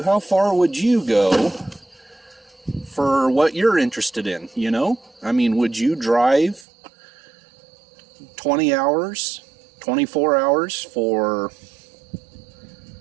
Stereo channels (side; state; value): left; drops out; at 6.7 s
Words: how far would you go for what you're interested in, you know? I mean, would you drive 20 hours, 24 hours for,